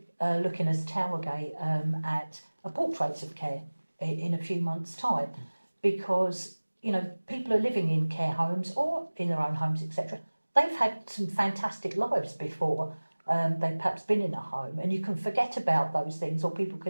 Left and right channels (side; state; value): both; inverted; correlation -1.00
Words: looking as Towergate at a portraits of care in a few months' time, because people are living in care homes or in their own homes, etc. They've had some fantastic lives before they've perhaps been in a home, and you can forget about those things, or people